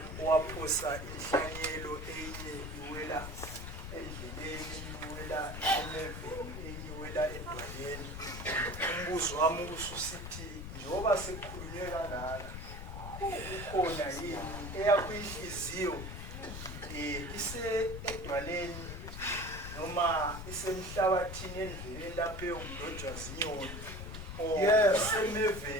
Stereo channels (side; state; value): left; noise; rumble, 8 dB below the sound